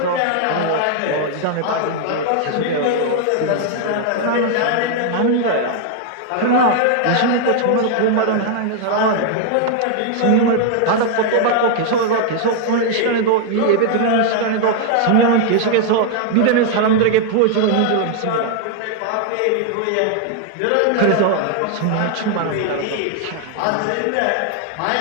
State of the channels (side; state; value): both; different; correlation 0.00